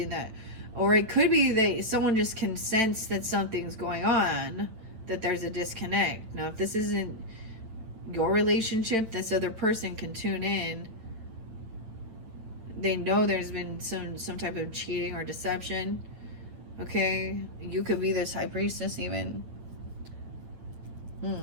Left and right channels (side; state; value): left; late; 9.0 ms